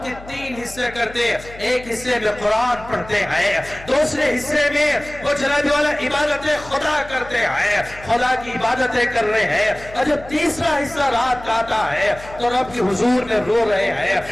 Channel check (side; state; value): left; noise; hum, 18 dB below the sound